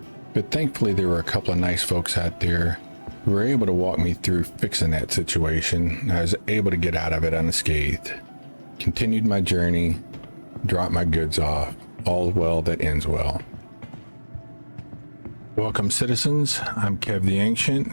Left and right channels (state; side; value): inverted; both; correlation -1.00